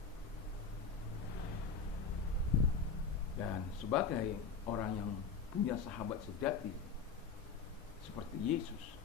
Dan sebagai orang yang punya sahabat sejati seperti Yesus,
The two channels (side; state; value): right; quieter; 5.4 dB